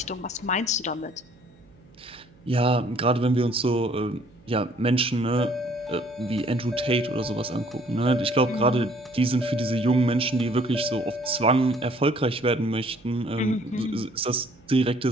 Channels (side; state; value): right; noise; hum, 29 dB below the sound